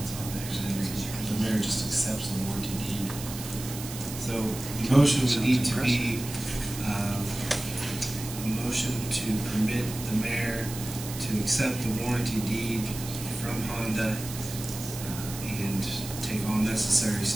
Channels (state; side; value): noise; right; hiss, 10 dB below the sound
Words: So the motion would need to be a motion to permit the mayor to accept the warranty deed from Honda and take all necessary